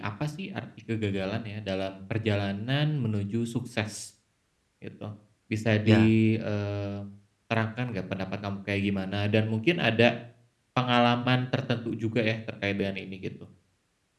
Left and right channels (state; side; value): identical; both; correlation 1.00